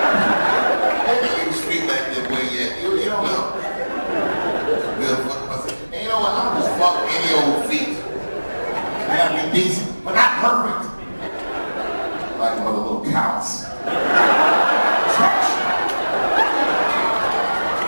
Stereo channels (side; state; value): both; inverted; correlation -1.00